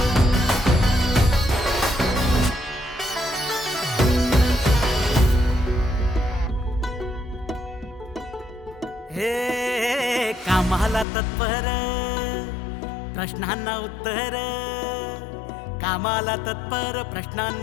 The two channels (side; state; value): right; drops out; at 11.1 s